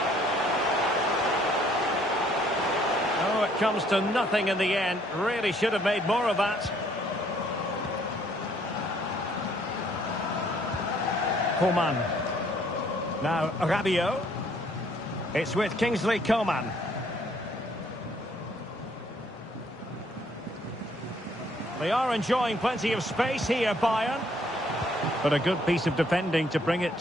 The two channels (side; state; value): both; normal; correlation 0.64